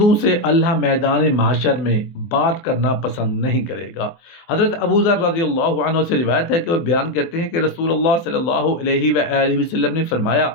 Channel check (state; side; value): late; right; 23 ms